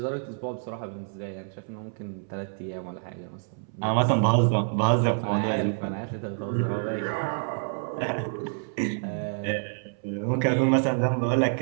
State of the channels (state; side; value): silent; left; 60 dB below the other